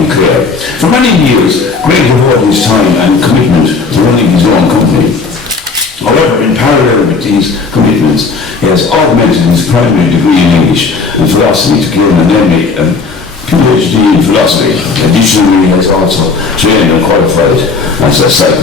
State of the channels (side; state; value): right; quieter; 4.5 dB